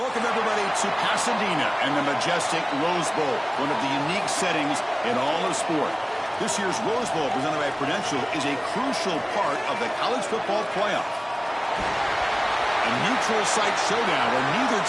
everybody, to Pasadena and the majestic Rose Bowl, one of the unique settings in all of sport. This year's Rose Bowl, presented by Prudential, is a crucial part of the college football playoff. A neutral site showdown where neither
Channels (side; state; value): both; identical; correlation 1.00